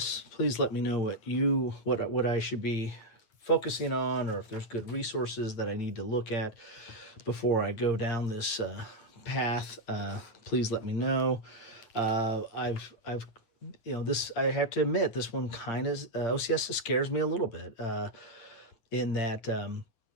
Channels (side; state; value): right; late; 8.8 ms